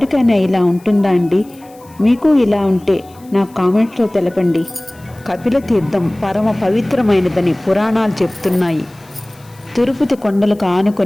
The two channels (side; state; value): left; noise; hiss, 28 dB below the sound